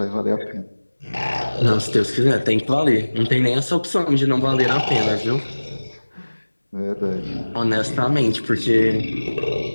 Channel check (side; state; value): both; inverted; correlation -1.00